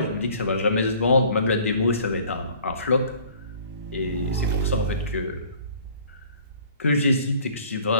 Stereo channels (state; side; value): inverted; both; correlation -0.52